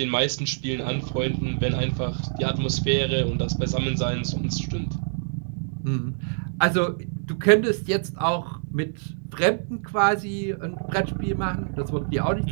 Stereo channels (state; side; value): silent; left; digital silence